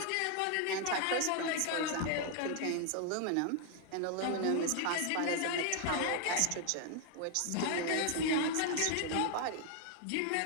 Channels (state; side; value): different; both; correlation 0.00